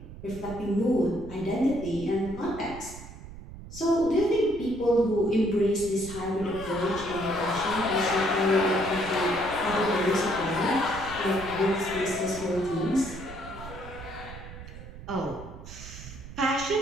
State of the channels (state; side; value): noise; right; rumble, 13 dB below the sound